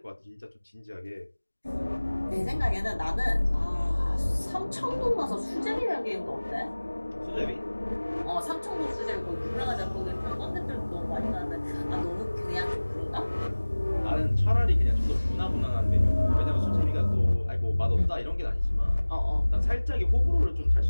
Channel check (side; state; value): both; inverted; correlation -1.00